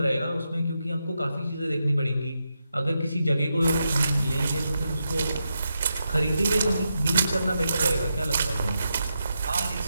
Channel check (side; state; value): both; inverted; correlation -0.86